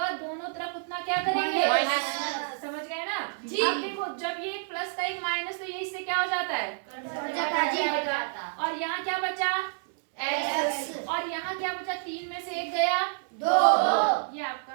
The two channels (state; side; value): silent; left; 59 dB below the other